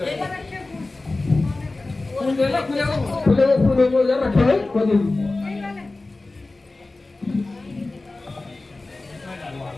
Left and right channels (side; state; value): right; quieter; 3.2 dB